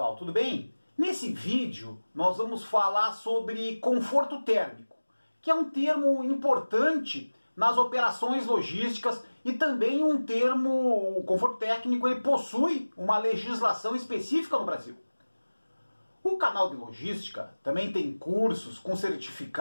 tudo bem? Nesse vídeo nós vamos falar sobre conforto térmico, que é um termo importante nas operações logísticas e também um termo, o conforto técnico, ele possui uma legislação específica no Brasil. O canal de logística também tem cursos com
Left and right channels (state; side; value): inverted; both; correlation -1.00